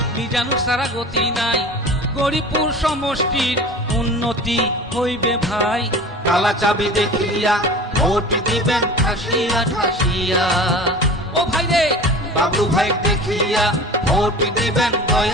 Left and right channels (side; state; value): both; normal; correlation 0.38